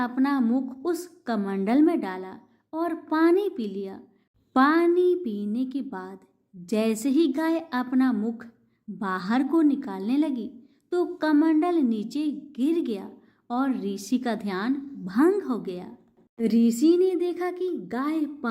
मुख उस कमंडल में डाला और पानी पी लिया। पानी पीने के बाद जैसे ही गाय अपना मुख बाहर को निकालने लगी तो कमंडल नीचे गिर गया और ऋषि का ध्यान भंग हो गया। ऋषि ने देखा कि गाय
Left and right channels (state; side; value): identical; both; correlation 1.00